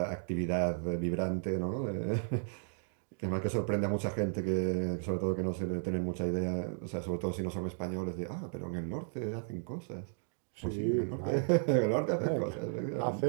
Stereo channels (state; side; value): silent; left; digital silence